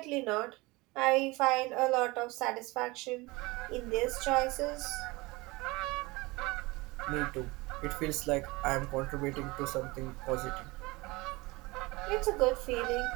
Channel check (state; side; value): quieter; left; 23.0 dB